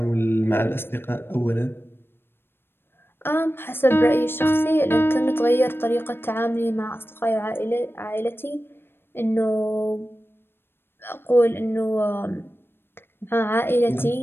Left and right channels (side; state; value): right; late; 0.11 ms